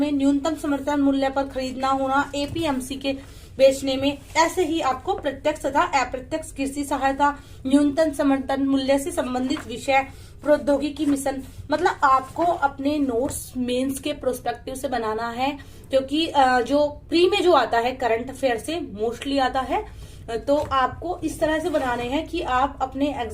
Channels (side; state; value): both; identical; correlation 1.00